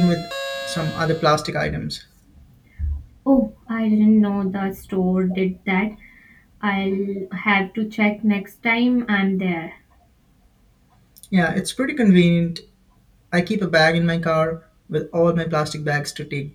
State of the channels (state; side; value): identical; both; correlation 1.00